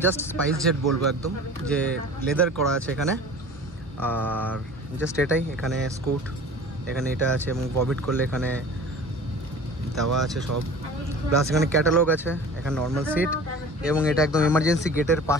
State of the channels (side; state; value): both; normal; correlation 0.41